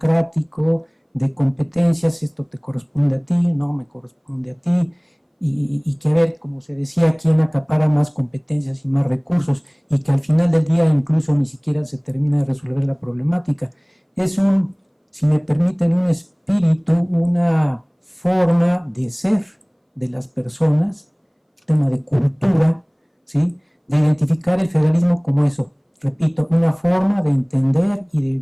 de competencias, esto te corresponde a ti, no me corresponde a ti, y que a ver, como se decía, quién acapara más competencias y más recursos, y que al final del día incluso ni siquiera se termina de resolver la problemática. es un, si me permiten, un espíritu, una forma de ser de las personas, tema de cultura, ¿sí? De identificar el federalismo como eso, repito, una forma de entender y de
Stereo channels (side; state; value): both; identical; correlation 1.00